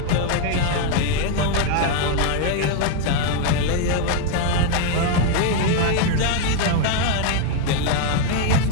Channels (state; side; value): different; both; correlation 0.01